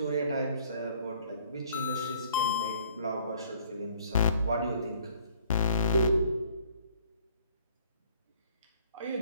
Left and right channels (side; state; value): both; inverted; correlation -0.59